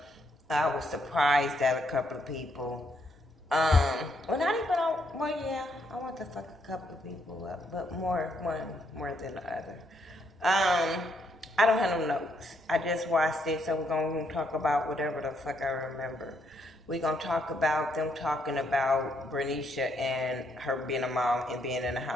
I was surprised at a couple of people. Well, not even, well, yeah, I want to fuck a couple of people up, but one more than the other. I don't have no notes. I just watched it, so we're going to talk about whatever the fuck I remember. We're going to talk about them talking about Bernicia and her being a mom and being in the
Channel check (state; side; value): normal; both; correlation 0.74